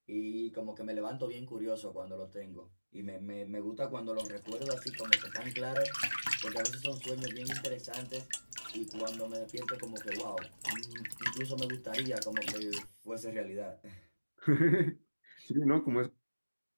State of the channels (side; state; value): both; inverted; correlation -1.00